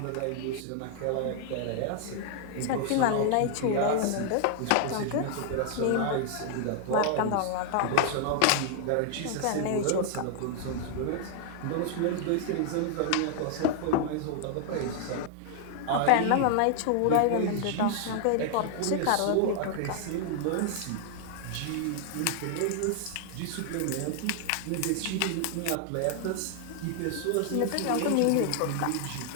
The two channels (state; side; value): different; both; correlation 0.00